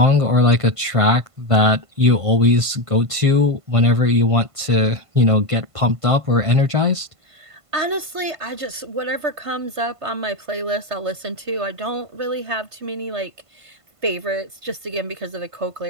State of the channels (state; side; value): late; left; 1.5 ms